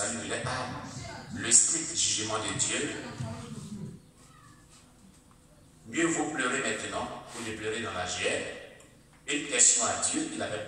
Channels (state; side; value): identical; both; correlation 1.00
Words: de leur âme, le strict jugement de Dieu. Mieux vaut pleurer maintenant que de pleurer dans la GR. Une question à Dieu qu'il